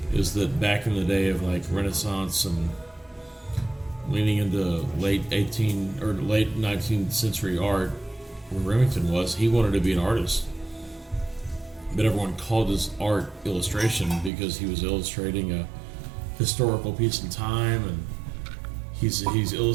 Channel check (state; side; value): drops out; left; at 14.3 s